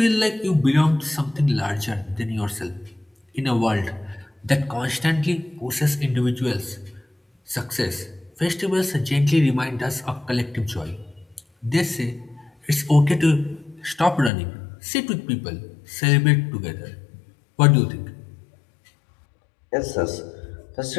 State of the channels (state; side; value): drops out; right; at 14.3 s